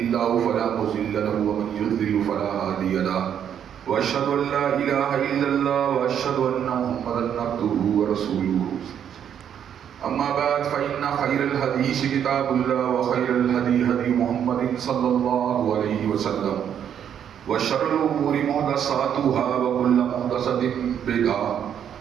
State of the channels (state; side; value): quieter; left; 9.0 dB